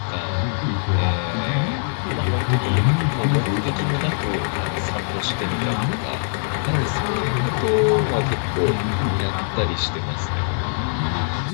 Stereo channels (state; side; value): silent; right; digital silence